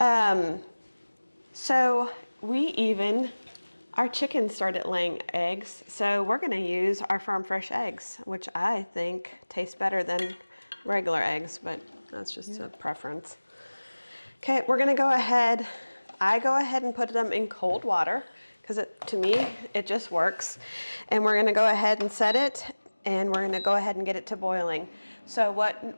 So our chickens started laying eggs, so we're gonna use our farm fresh eggs, which I think taste better than regular eggs, but that's just a preference. Okay, we're gonna go ahead. I go ahead and put them in cold water because to me, it just works. And we're gonna go ahead and set it, and we're gonna go ahead and get it to boiling. So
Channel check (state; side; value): inverted; both; correlation -1.00